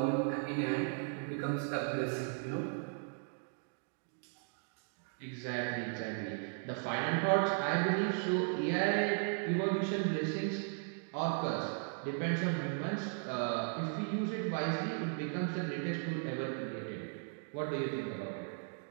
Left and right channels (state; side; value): silent; left; 53 dB below the other